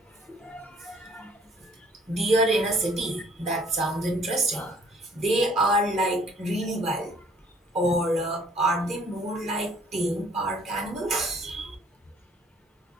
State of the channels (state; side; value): normal; both; correlation 0.58